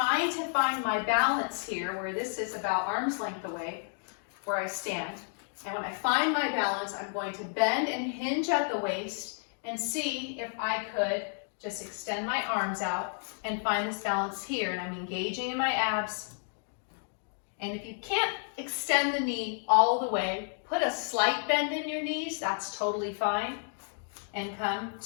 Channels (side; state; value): right; silent; 57 dB below the other